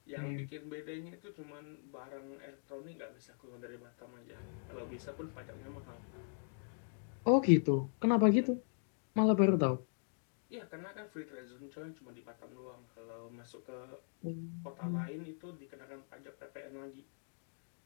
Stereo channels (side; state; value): right; silent; digital silence